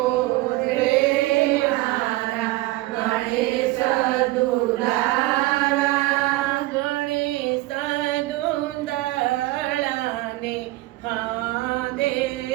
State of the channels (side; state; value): left; quieter; 19.0 dB